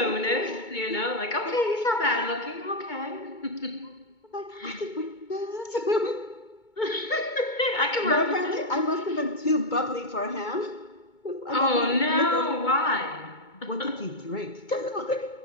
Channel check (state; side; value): late; right; 2.2 ms